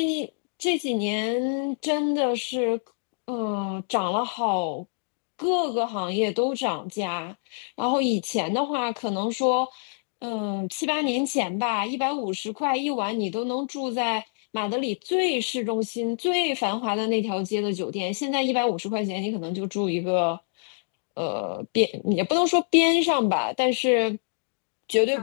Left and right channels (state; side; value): silent; right; digital silence